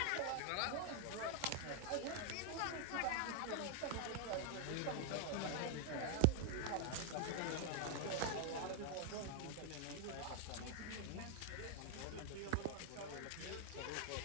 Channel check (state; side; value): different; both; correlation 0.00